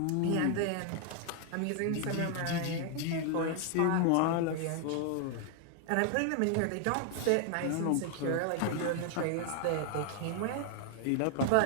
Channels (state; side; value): different; both; correlation 0.00